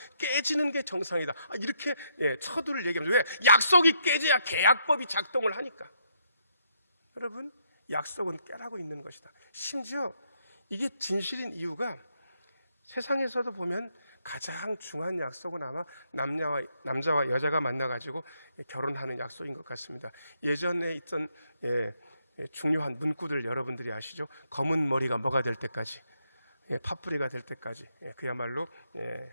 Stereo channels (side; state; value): both; inverted; correlation -0.75